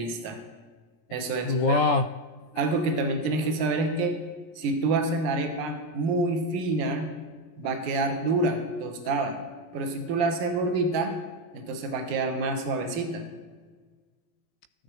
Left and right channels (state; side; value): late; right; 17 ms